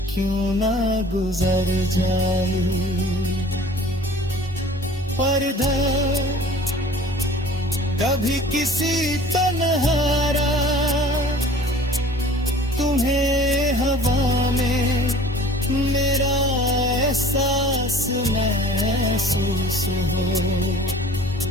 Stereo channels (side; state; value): both; normal; correlation 0.47